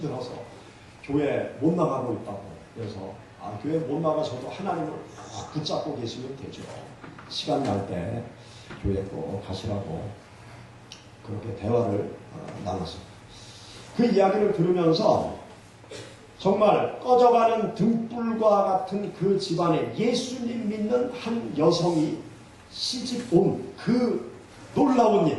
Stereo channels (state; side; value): identical; both; correlation 1.00